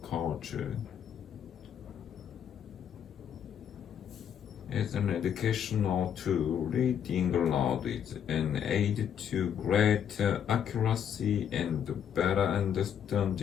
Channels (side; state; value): right; quieter; 8.8 dB